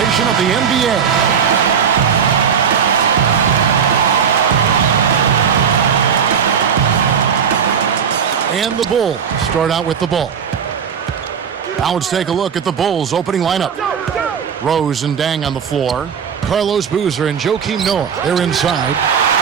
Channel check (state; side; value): quieter; left; 7.2 dB